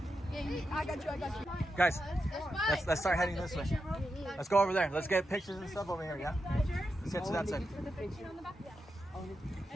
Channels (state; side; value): normal; both; correlation 0.87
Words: Yeah, I got you. Guys, let's start heading this way. Let's go over there. Let's get pictures and stuff over here, yeah? Let's head to that side.